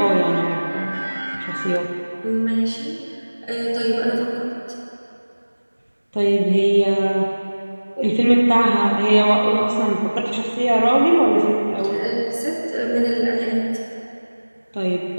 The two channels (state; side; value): inverted; both; correlation -1.00